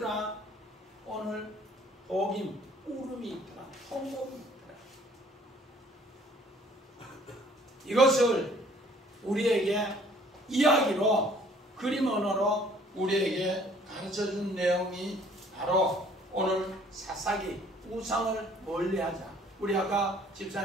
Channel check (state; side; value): normal; both; correlation 0.57